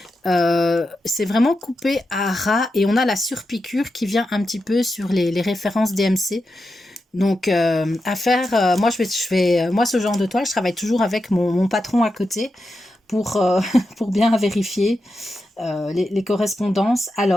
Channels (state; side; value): normal; both; correlation 0.89